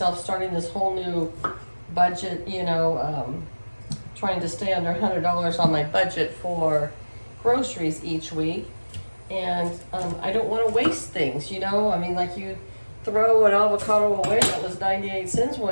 starting this whole new budget, trying to stay under $100 on my budget for groceries each week. And I don't want to waste things, I mean, like, you throw an avocado away that was 98 cents, well,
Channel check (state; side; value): inverted; both; correlation -1.00